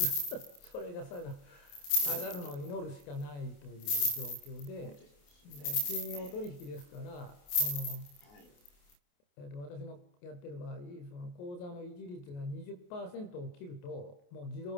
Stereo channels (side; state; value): right; late; 28 ms